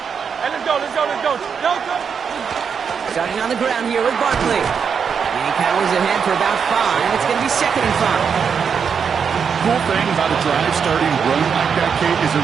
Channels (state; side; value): quieter; left; 6.6 dB